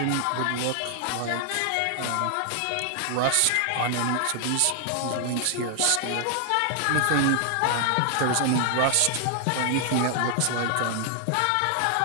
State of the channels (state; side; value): different; both; correlation 0.00